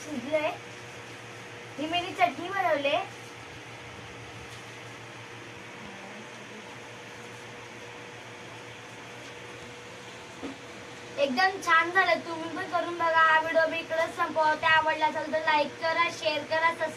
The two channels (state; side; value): identical; both; correlation 1.00